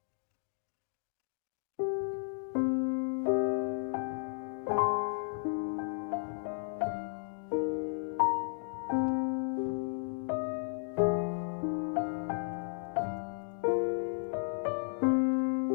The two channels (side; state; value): right; silent; digital silence